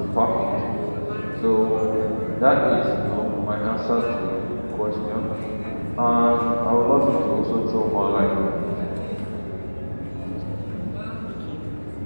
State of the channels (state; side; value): inverted; both; correlation -1.00